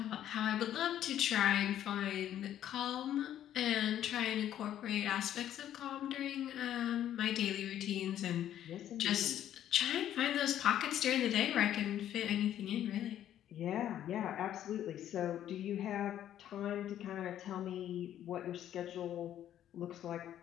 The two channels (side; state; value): right; quieter; 11.2 dB